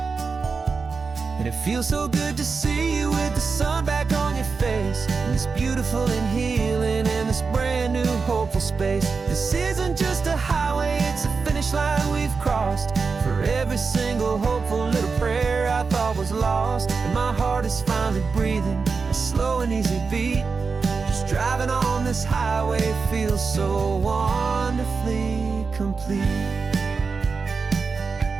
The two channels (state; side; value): quieter; left; 4.8 dB